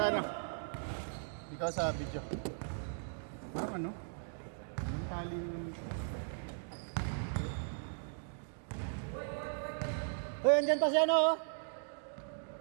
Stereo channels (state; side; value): silent; left; digital silence